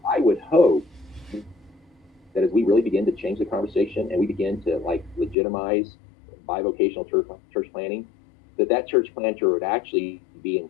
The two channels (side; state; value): right; drops out; at 5.4 s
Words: I would hope that as we really begin to change the conversation and we begin to like legitimize bivocational church planting, that church planter would actually be